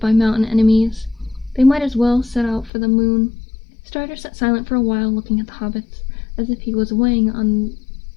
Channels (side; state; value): right; drops out; at 2.7 s